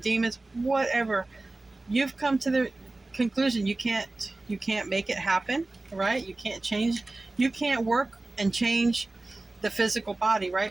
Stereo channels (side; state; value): left; quieter; 3.0 dB